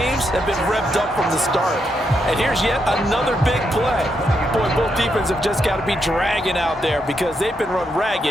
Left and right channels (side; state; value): both; normal; correlation 0.80